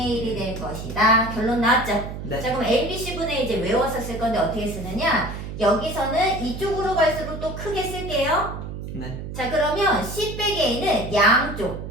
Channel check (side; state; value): right; noise; hum, 8 dB below the sound